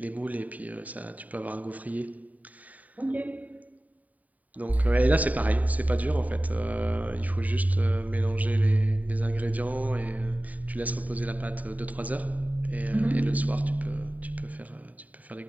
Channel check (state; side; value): late; left; 0.073 ms